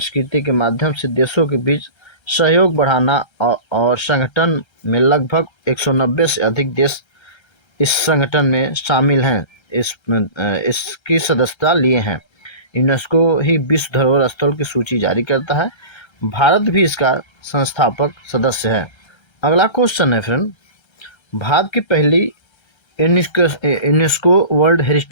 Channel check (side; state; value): right; late; 1.3 ms